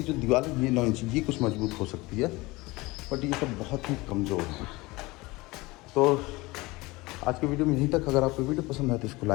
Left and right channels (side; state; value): right; quieter; 22.0 dB